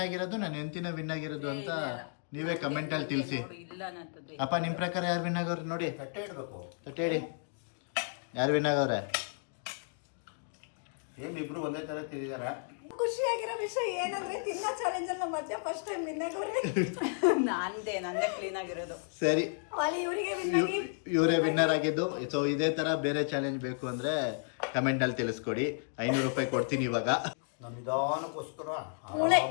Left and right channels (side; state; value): right; silent; digital silence